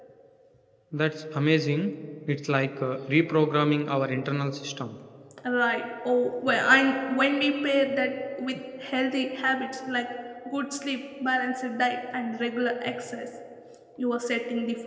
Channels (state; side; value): identical; both; correlation 1.00